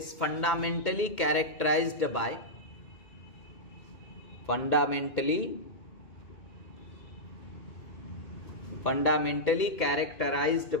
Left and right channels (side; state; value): right; late; 2.1 ms